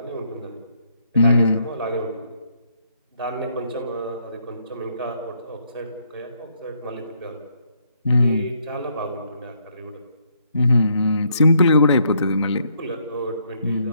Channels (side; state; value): both; inverted; correlation -0.72